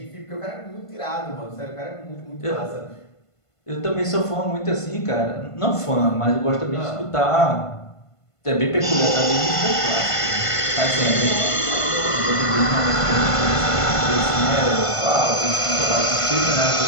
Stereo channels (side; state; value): right; late; 1.5 ms